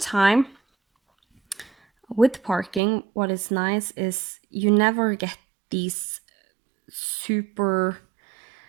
with parking, what is nice is you never get these super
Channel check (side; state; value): left; drops out; at 2.8 s